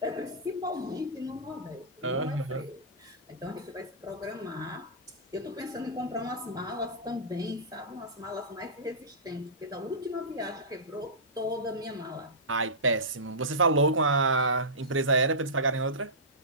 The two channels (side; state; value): both; normal; correlation -0.18